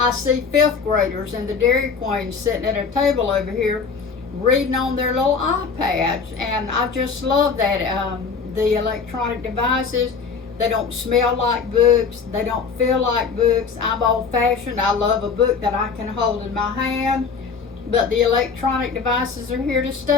see fifth graders in the Dairy Queen sitting at a table over here reading on their little iPads, and I just love that. The electronic devices, they don't smell like books, they don't feel like books. I'm old-fashioned. I love a book that I can hold in my hand, but the electronic devices are here to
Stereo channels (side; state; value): right; quieter; 5.4 dB